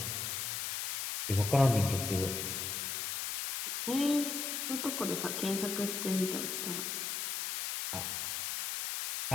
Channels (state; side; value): noise; left; hiss, 2 dB below the sound